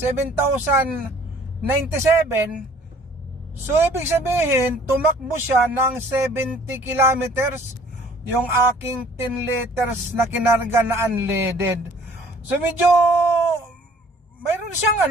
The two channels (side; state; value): both; normal; correlation 0.54